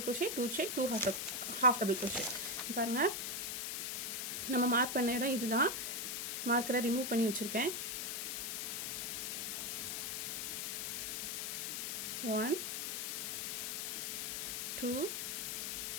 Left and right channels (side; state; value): left; noise; hiss, 2 dB below the sound